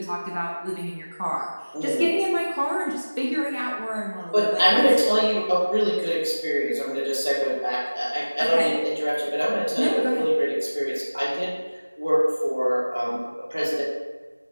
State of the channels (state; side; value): inverted; both; correlation -1.00